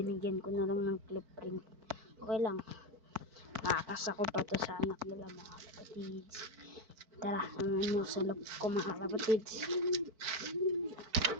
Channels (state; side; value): late; left; 4.5 ms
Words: ko na lang ng clip ring. Okay lang. Makakasa ko pa to sa anak nila mga kalapatids. Tara, naman nyo sa loob ko mga kalapatids.